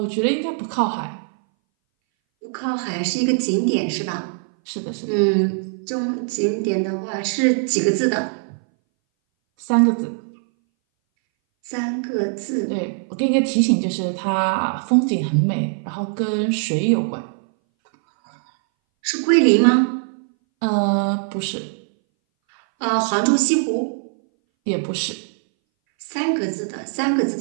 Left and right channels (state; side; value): silent; left; 61 dB below the other